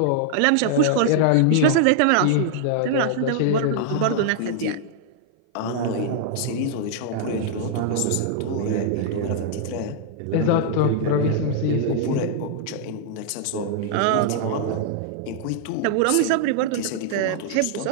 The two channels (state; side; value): different; both; correlation -0.01